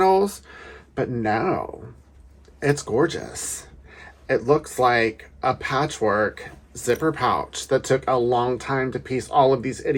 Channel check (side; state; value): both; identical; correlation 1.00